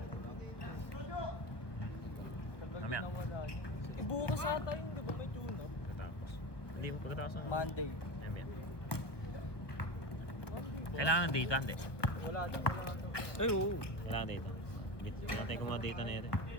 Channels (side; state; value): right; late; 1.0 ms